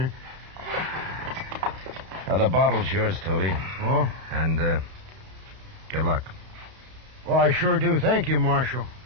The bottle's yours, Toby. Oh? And, good luck. Well, I sure do. Thank you, Marshal.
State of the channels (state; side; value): late; left; 32 ms